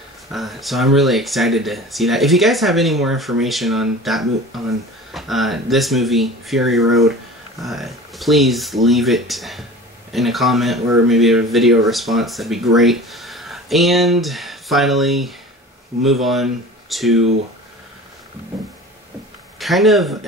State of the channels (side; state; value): both; normal; correlation 0.39